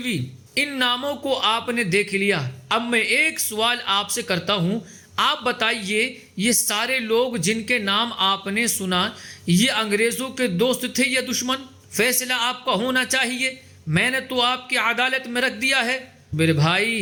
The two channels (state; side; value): identical; both; correlation 1.00